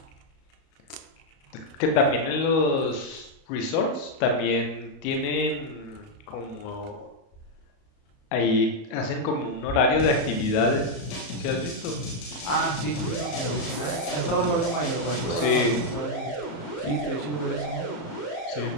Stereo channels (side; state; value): right; late; 34 ms